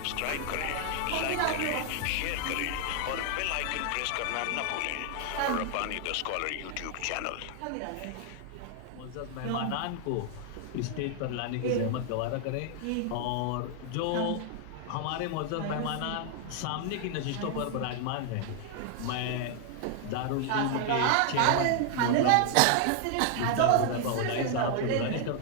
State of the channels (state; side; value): different; both; correlation 0.00